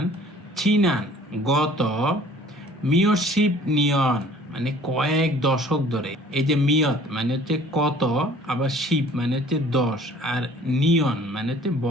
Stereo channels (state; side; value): normal; both; correlation 0.52